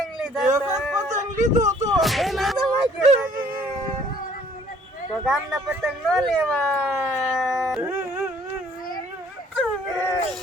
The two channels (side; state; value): both; normal; correlation 0.59